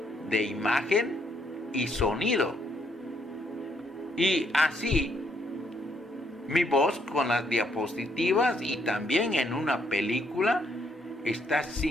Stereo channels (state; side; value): normal; both; correlation 0.73